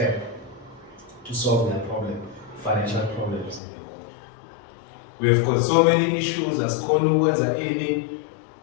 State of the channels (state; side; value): drops out; right; at 3.6 s